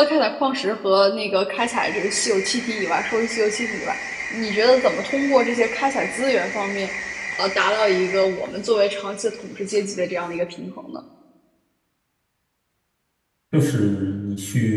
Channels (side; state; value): both; identical; correlation 1.00